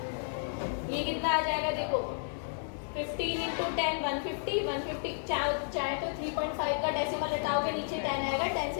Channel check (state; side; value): silent; right; digital silence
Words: ये कितना आ जाएगा देखो, 15 इंटू 10 150 चाहे तो 3.5 का डेसिमल हटाओगे नीचे 10 आएगा, 10